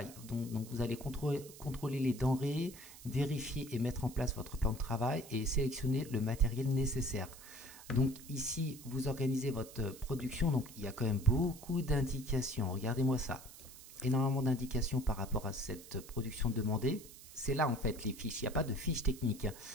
Donc vous allez contrôler les denrées, vérifier et mettre en place votre plan de travail et sélectionner le matériel nécessaire. Donc ici, vous organisez votre production. Donc il y a quand même beaucoup d'indications. Regardez-moi ça. Énormément d'indications par rapport à cette production demandée. C'est là en fait les fiches. Il n'y a pas de fiches techniques.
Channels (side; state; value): right; noise; hiss, 17 dB below the sound